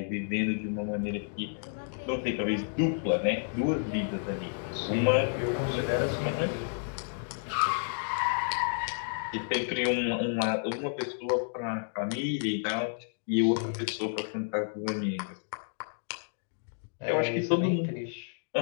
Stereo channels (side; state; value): right; silent; digital silence